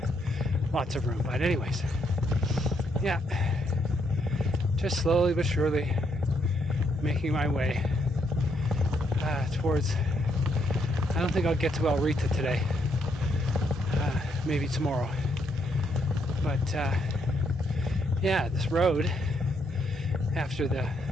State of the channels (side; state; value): both; normal; correlation 0.74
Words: lots of room. But anyways, yeah, just slowly but surely making my way towards, I don't think I'll get to El Rita today, maybe tomorrow, but yeah, this road after the